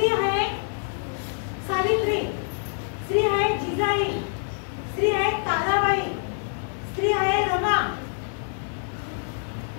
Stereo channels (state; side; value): silent; right; digital silence